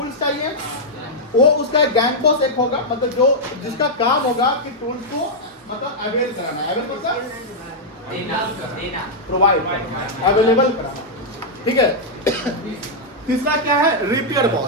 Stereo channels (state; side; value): normal; both; correlation -0.05